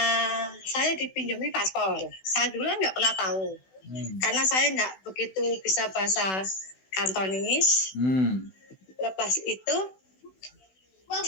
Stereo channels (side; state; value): right; late; 16 ms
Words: saya dipinjami paspor. Saya dulu nggak pernah tahu, karena saya nggak begitu bisa bahasa Kantonis. Lepas itu